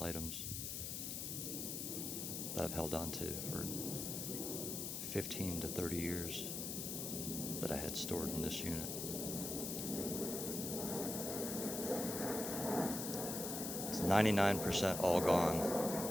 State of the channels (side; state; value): left; noise; hiss, 4 dB below the sound